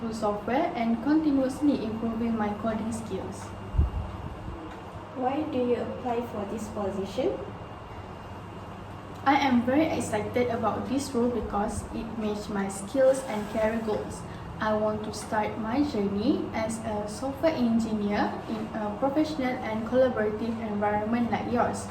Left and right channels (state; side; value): identical; both; correlation 1.00